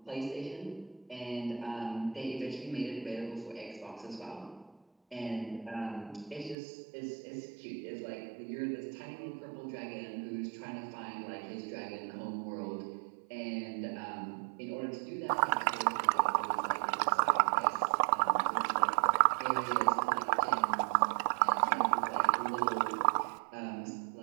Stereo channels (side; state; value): left; drops out; at 6.6 s